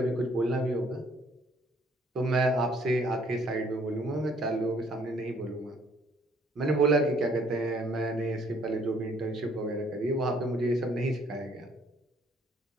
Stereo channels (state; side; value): normal; both; correlation 0.63